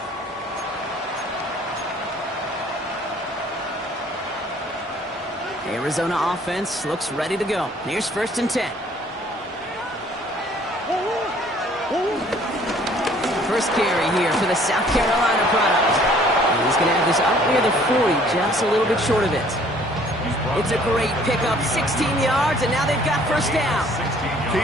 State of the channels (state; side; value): normal; both; correlation 0.57